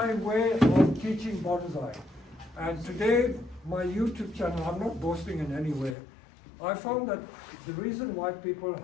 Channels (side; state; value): right; drops out; at 6.0 s